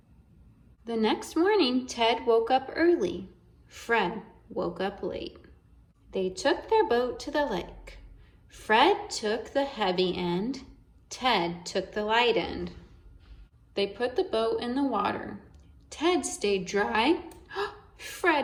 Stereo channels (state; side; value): identical; both; correlation 1.00